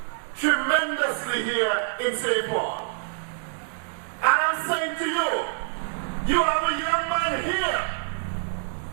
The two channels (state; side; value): silent; left; digital silence